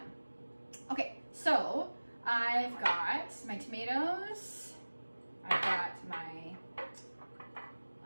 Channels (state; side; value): inverted; both; correlation -1.00